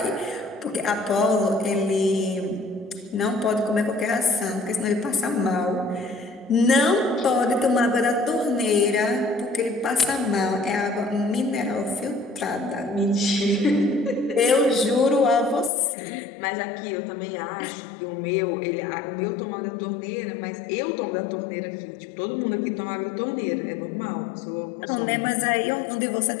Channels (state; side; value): drops out; right; at 15.7 s